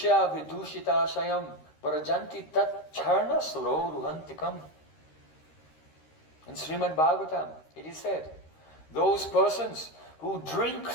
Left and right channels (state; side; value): late; right; 13 ms